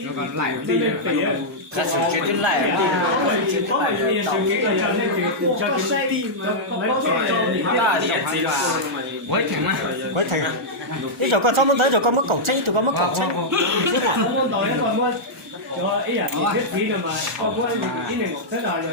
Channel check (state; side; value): normal; both; correlation -0.08